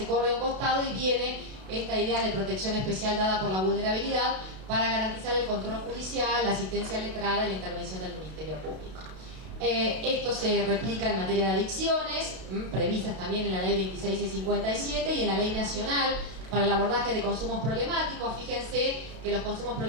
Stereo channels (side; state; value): left; late; 32 ms